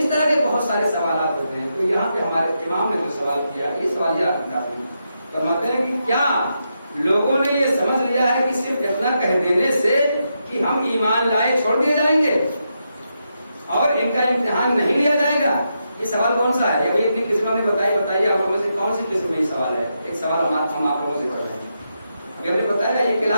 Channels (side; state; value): both; inverted; correlation -0.84